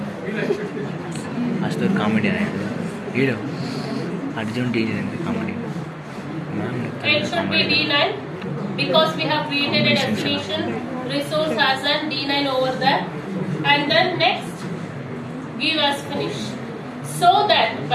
Astor comedian. Hero. Arjun D9 comedy. It should be D9 because we have created a destination resource as an D9 over there. And then next, give as finish. So that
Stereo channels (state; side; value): identical; both; correlation 1.00